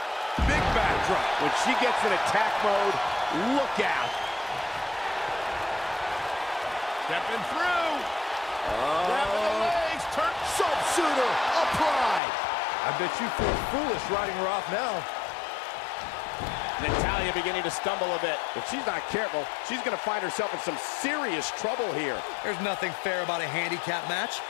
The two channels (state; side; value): drops out; right; at 12.2 s